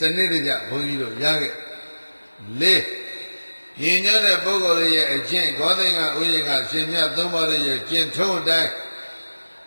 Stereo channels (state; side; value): inverted; both; correlation -1.00